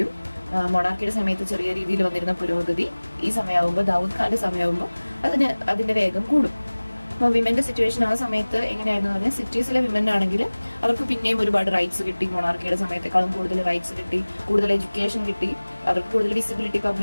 മൊണാർക്കിയുടെ സമയത്ത് ചെറിയ രീതിയിൽ വന്നിരുന്ന പുരോഗതി ഈ സമയമാകുമ്പോൾ, ദാവൂദ് ഖാന്റെ സമയമാകുമ്പോൾ അതിന്റെ വേഗം കൂടും. അപ്പോൾ വിമന്റെ സിറ്റുവേഷൻ ആ സമയത്ത് എങ്ങനെയായിരുന്നു പറഞ്ഞാൽ, സിറ്റീസിലെ വിമൻ ആണെങ്കിൽ അവർക്ക് പിന്നെയും ഒരുപാട് റൈറ്റ്സ് കിട്ടി. മൊണാർക്കിയുടെ സമയത്തേക്കാളും കൂടുതൽ റൈറ്റ്സ് കിട്ടി, കൂടുതൽ എഡ്യൂക്കേഷൻ കിട്ടി, അവർക്ക് കൂടുതൽ വിസിബിലിറ്റി,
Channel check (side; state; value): both; inverted; correlation -1.00